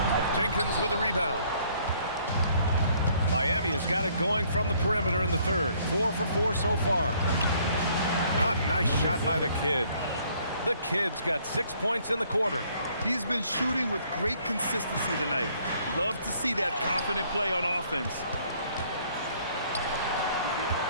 Jenkins with a rebound. Miami has got it going from the perimeter in the third. 4 for 4 so far. A nice shot by the kid. The kid's got 6 points in the quarter. He's been shooting with great consistency tonight. Love to see that confident play on offense.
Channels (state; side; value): inverted; both; correlation -0.63